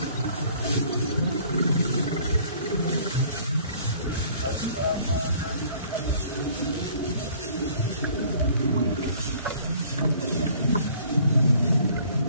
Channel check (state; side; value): inverted; both; correlation -0.55